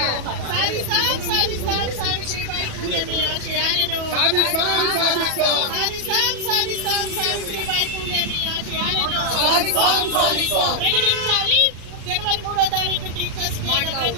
సాధిస్తాం సావిత్రిబాయి పూలే మీ ఆశయాలను సాధిస్తాం సావిత్రిబాయి పూలే మీ ఆశయాలను ప్రకటించాలి. జనవరి 3వ తారీఖు టీచర్స్ డే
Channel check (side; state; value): left; late; 37 ms